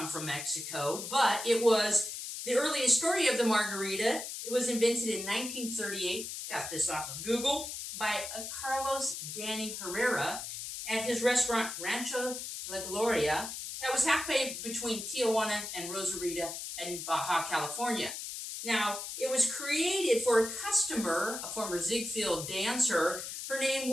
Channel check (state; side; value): noise; left; hiss, 7 dB below the sound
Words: from Mexico, but it was the earliest story of the margarita. It was invented in 1938. Got this off of Google by Carlos Danny Herrera at his restaurant Rancho La Gloria that was halfway between Tijuana and Rosarita in Baja California. Now, it was created for a customer, a former Ziegfeld dancer. Her name